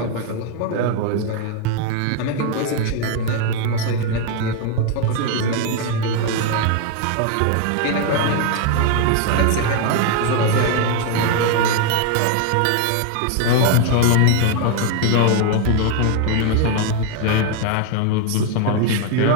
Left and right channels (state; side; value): different; both; correlation 0.01